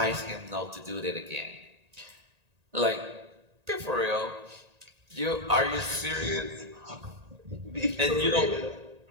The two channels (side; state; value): left; late; 1.8 ms